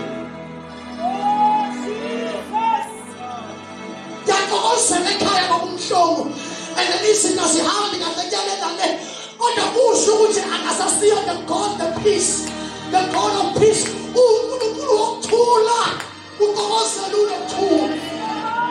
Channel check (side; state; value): both; identical; correlation 1.00